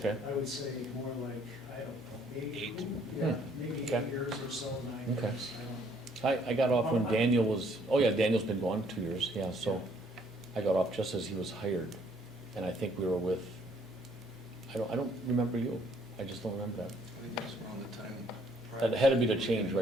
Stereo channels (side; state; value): both; normal; correlation 0.64